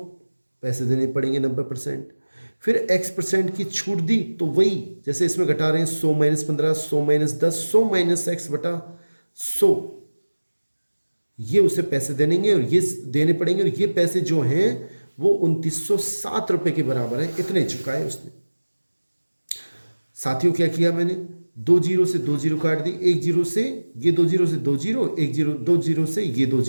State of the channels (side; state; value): both; inverted; correlation -1.00